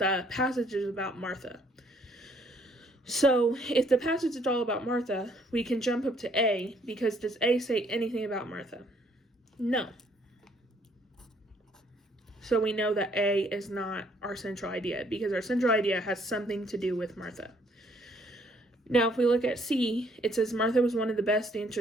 passage is about Martha. So, if the passage is all about Martha, we can jump up to A, because does A say anything about Martha? No. So we know that A is not our central idea, because our central idea has something to do with Martha. Now, if we look at C, it says Martha was one of the best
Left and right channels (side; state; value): both; normal; correlation 0.65